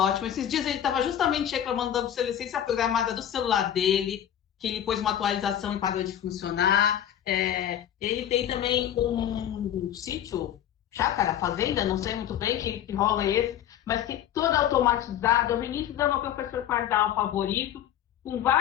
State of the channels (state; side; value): quieter; right; 10.6 dB